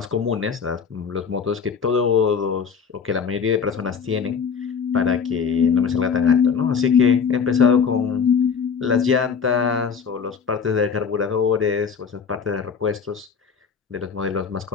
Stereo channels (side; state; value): right; quieter; 6.3 dB